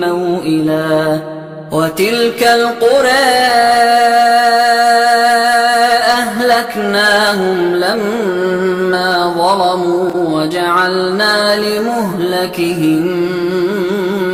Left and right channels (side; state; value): both; identical; correlation 1.00